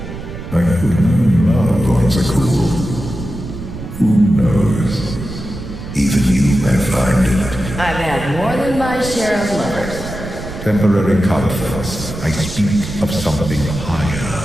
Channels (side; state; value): right; noise; rumble, 10 dB below the sound